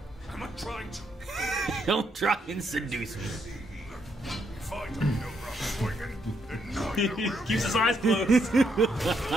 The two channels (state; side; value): normal; both; correlation 0.76